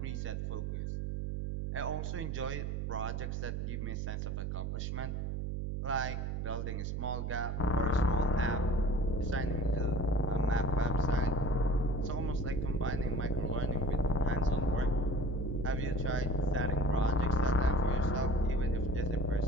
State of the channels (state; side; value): noise; right; hum, 2 dB below the sound